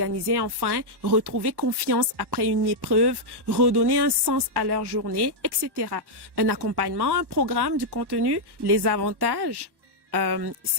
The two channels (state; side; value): late; left; 1.1 ms